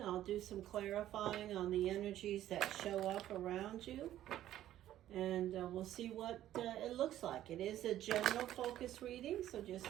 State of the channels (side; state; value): left; quieter; 12.7 dB